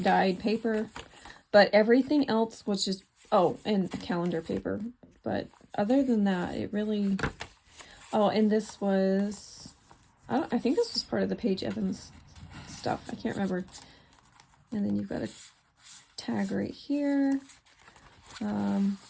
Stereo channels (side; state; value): both; identical; correlation 1.00